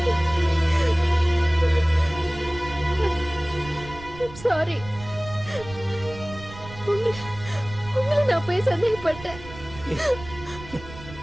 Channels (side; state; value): right; noise; rumble, 16 dB below the sound